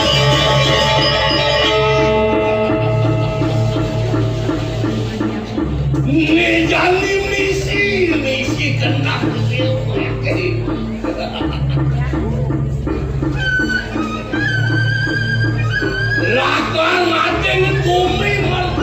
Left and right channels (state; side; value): identical; both; correlation 1.00